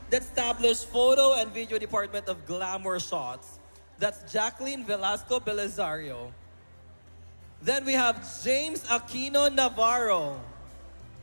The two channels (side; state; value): both; inverted; correlation -1.00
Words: that established photo and video department of Glamour Shots. That's Jacqueline Velasco Belizario. Then we have James Aquino Navarro,